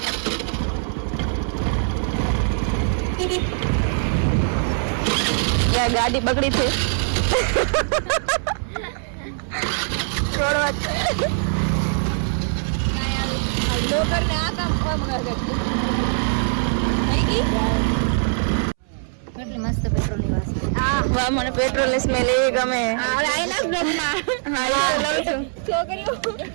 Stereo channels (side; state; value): left; silent; 64 dB below the other